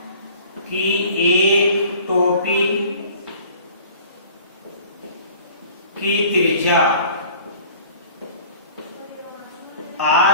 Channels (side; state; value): both; inverted; correlation -0.49